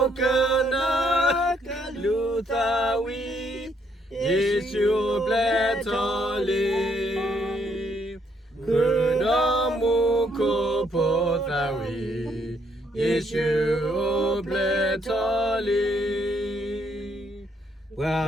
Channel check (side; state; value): both; normal; correlation 0.71